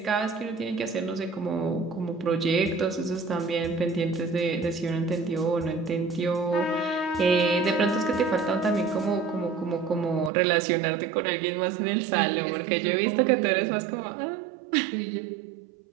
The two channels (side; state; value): left; drops out; at 10.3 s